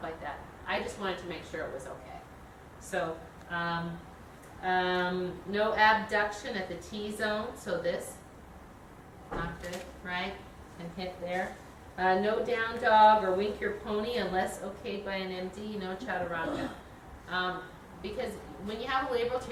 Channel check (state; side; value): identical; both; correlation 1.00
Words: that. I just wanted to make sure it was okay. So, no abduction at the T-zone, so this, not good, right? And hit there. No down dog or wink your pony unless okayed by an MD, no chaturanga. Because when you have a labral